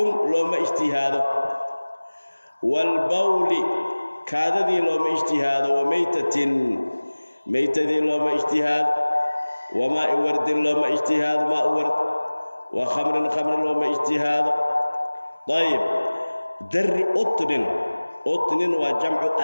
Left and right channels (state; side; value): inverted; both; correlation -1.00